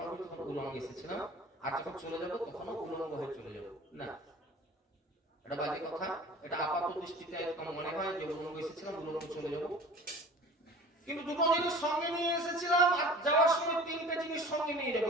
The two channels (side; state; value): both; normal; correlation 0.42